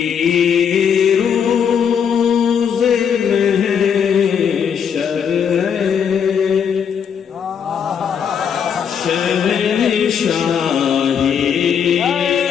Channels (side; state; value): right; quieter; 7.6 dB